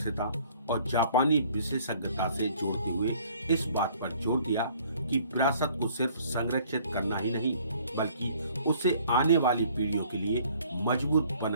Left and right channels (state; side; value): inverted; both; correlation -0.57